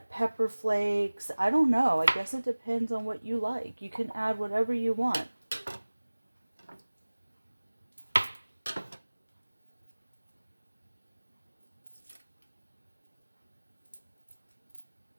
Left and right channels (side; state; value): both; inverted; correlation -1.00